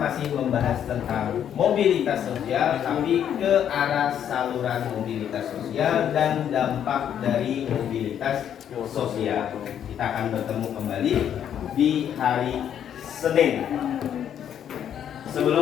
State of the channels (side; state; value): right; quieter; 9.4 dB